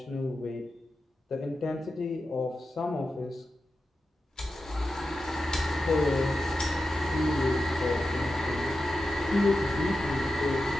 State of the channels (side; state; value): both; normal; correlation 0.91